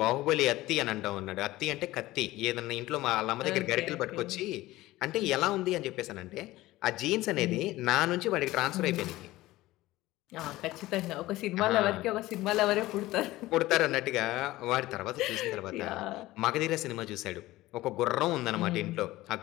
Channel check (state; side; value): quieter; right; 17.5 dB